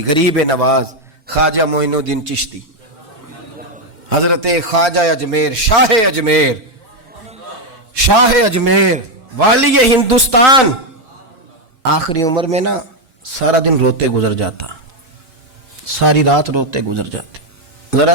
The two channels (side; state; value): left; late; 4.4 ms